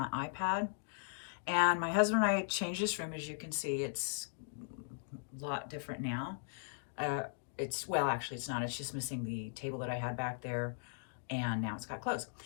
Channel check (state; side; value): silent; right; digital silence